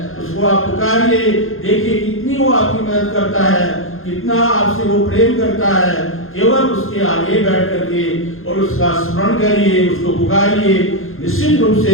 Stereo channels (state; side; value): late; right; 0.60 ms